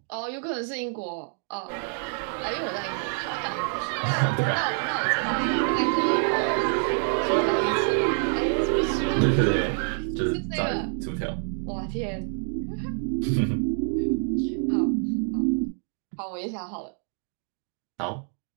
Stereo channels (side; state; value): left; silent; 56 dB below the other